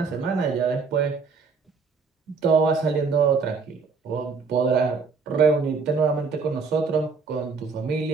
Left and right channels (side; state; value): left; quieter; 4.9 dB